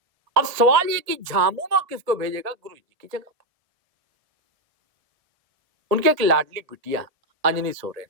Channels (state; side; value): late; left; 1.7 ms